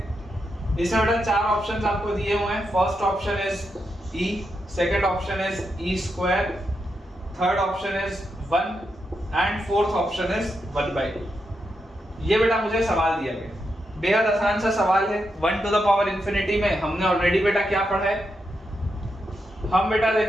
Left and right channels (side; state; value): both; normal; correlation 0.84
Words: इसमें बेटा 4 ऑप्शंस आपको दिए हुए हैं। First option is e, second option is e square, third option is 1 and fourth option is 1 by 2। ये बेटा मुझे सवाल दिया गया, बेहद आसान सा सवाल है। 1 टू द पावर इन्फिनिटी में हमने ऑलरेडी बेटा क्या पढ़ा है, हम बेटा